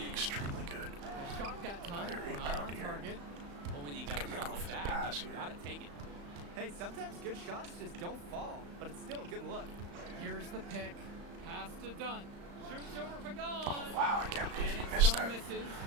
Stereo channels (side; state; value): left; late; 35 ms